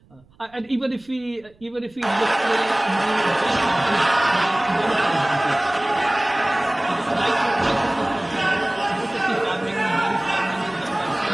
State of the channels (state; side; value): noise; right; rumble, 29 dB below the sound